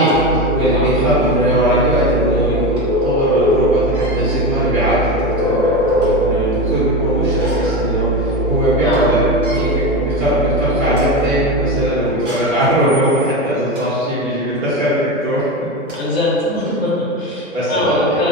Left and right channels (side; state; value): both; normal; correlation 0.20